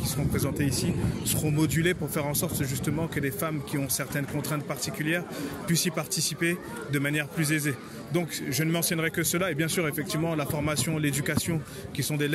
seront présentées ici seront modulées pour faire en sorte justement que les femmes qui ont certaines contraintes particulières puissent y participer de manière plus aisée. Donc je ne mentionnerai que cela et bien sûr effectivement la formation, l'éducation qui sont des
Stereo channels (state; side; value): identical; both; correlation 1.00